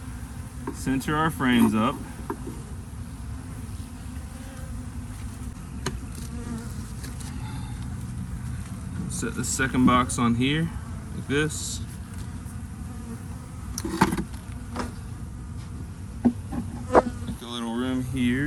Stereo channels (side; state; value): both; identical; correlation 1.00